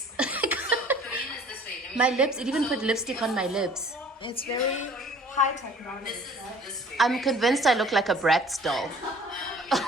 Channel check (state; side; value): normal; both; correlation 0.51